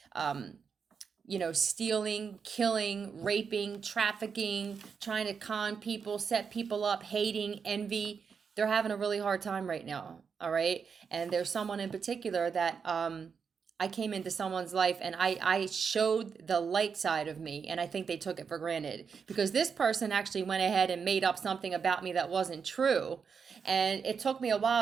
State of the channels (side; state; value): left; quieter; 6.1 dB